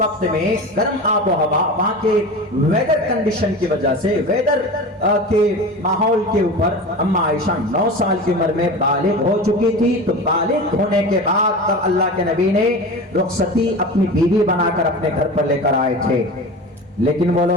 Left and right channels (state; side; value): normal; both; correlation 0.31